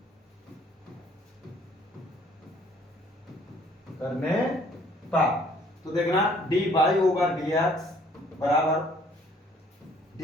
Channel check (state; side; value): normal; both; correlation 0.59